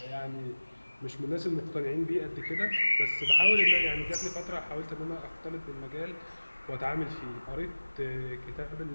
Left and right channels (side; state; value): both; inverted; correlation -1.00